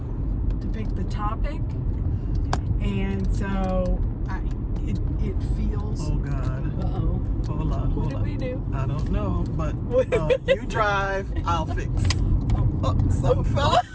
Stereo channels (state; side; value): identical; both; correlation 1.00